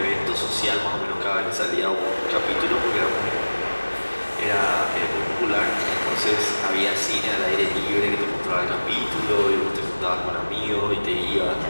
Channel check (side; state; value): both; inverted; correlation -1.00